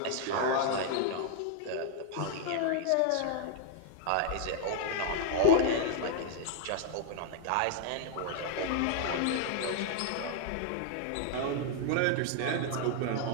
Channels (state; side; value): different; both; correlation 0.00